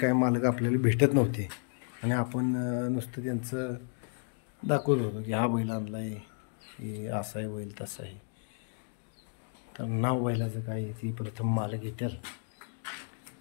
मालक आपल्याला भेटत नव्हते आणि आपण नुसतं त्यांचं दाखवत होतो की हा बैल आणला आहे, हे असा आहे बैल तसा आहे. तर नाव बैलाचं काय ती प्रथम मालक येतील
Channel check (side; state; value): right; silent; 56 dB below the other